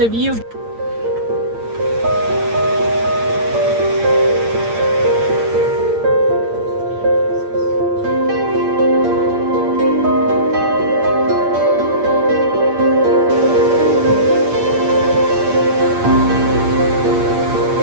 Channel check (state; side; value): late; left; 8.7 ms